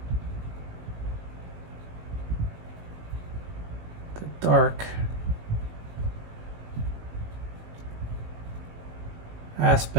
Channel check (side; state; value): left; late; 19 ms